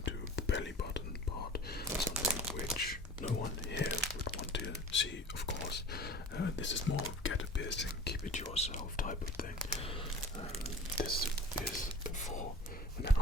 to the belly button part, something which no one here would want to see, of course. This is more get a piercing, keep it to yourself type of thing. This is for an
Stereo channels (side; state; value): both; normal; correlation 0.42